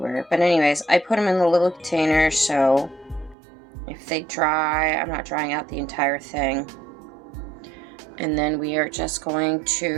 But anyways, I put them in the little container so if they dry, I'm not drying out the entire thing. And then we are just going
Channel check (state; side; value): drops out; left; at 3.4 s